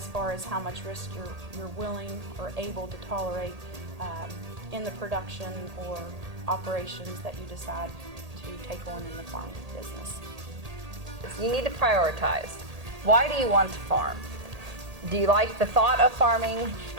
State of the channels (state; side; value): late; left; 1.8 ms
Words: far as how much risk you're willing or able to tolerate in the production or operations that you decide to take on in the farming business. You need to prioritize. Why do you want to farm? Do you like the thought of farming?